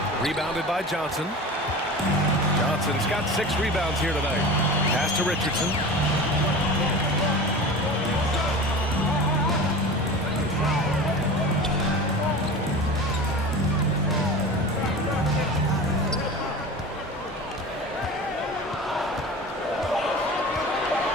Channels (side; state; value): both; normal; correlation 0.33